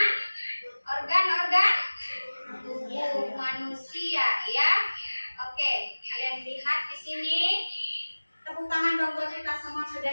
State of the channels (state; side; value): inverted; both; correlation -1.00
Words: organ-organ tubuh manusia ya. Oke, kalian lihat di sini. Tepuk tangan dong buat kita semua, sudah